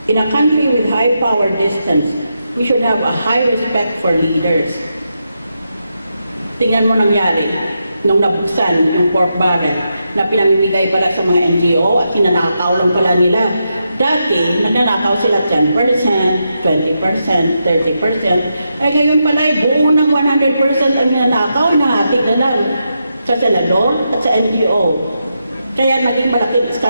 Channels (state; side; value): inverted; both; correlation -0.85